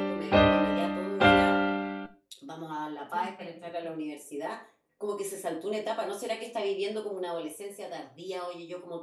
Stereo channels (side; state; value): both; identical; correlation 1.00